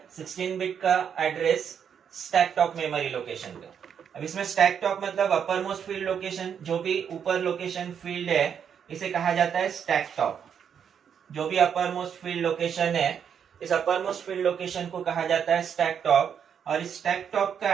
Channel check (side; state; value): left; quieter; 7.8 dB